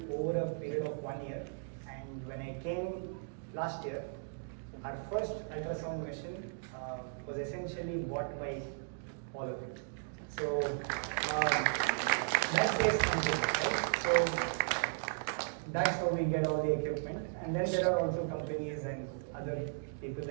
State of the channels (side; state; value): left; silent; digital silence